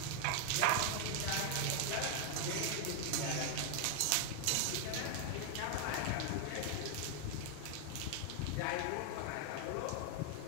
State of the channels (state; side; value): different; both; correlation 0.00